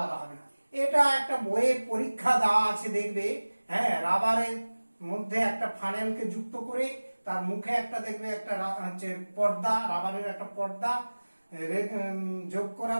হবে না। এটা একটা বইয়ে পরীক্ষা দেওয়া আছে, দেখবে। হ্যাঁ, রাবারের মধ্যে একটা ফানেলকে যুক্ত করে তার মুখে একটা দেখবে একটা হচ্ছে পর্দা, রাবারের একটা পর্দা যোগ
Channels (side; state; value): both; inverted; correlation -1.00